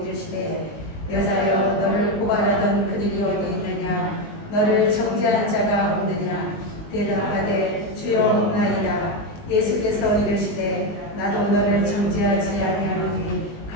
이르시되 여자여 너를 고발하던 그들이 어디 있느냐. 너를 정죄한 자가 없느냐. 대답하되 주여 없나이다. 예수께서 이르시되 나도 너를 정죄하지 아니하노니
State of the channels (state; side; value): late; right; 19 ms